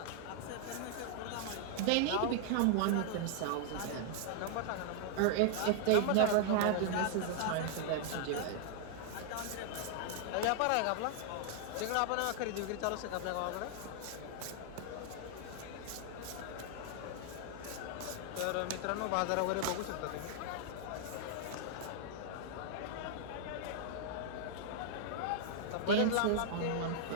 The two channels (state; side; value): different; both; correlation -0.01